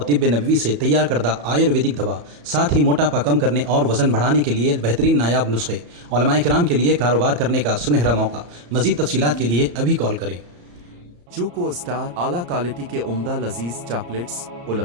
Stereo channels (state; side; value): late; left; 34 ms